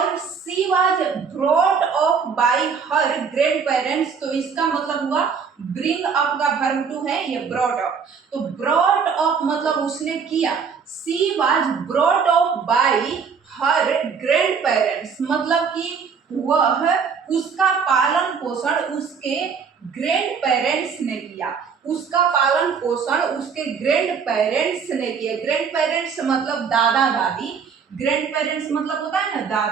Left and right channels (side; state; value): left; quieter; 6.1 dB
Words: she was brought up by her grand parents, तो इसका मतलब हुआ ब्रिंग अप का वर्ब टू है ये ब्रॉट अप। तो ब्रॉट अप मतलब उसने किया। She was brought up by her grand parents मतलब कि वह उसका पालन पोषण उसके ग्रैंड पेरेंट्स ने किया, उसका पालन पोषण उसके ग्रैंड पेरेंट्स ने किया। ग्रैंड पेरेंट्स मतलब दादा दादी, ग्रैंड पेरेंट्स मतलब होता है ना